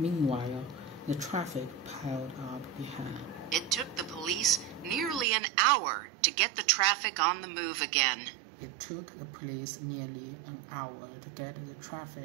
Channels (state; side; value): drops out; left; at 5.2 s